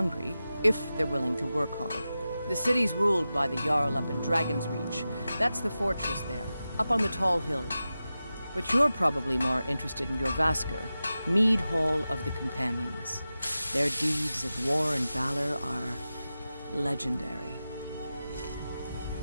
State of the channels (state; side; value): inverted; both; correlation -0.93